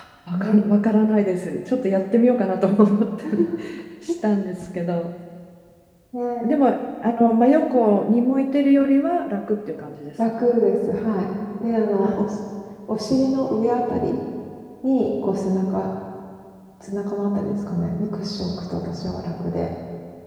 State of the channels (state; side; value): identical; both; correlation 1.00